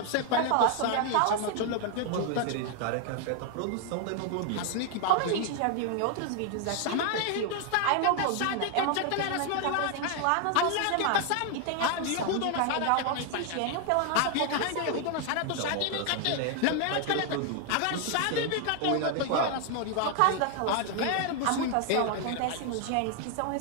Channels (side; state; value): both; different; correlation 0.01